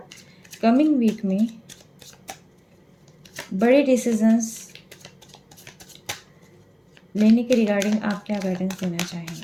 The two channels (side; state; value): both; identical; correlation 1.00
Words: कमिंग वीक में बड़े डिसीजंस लेने के रिगार्डिंग आप क्या गाइडेंस देना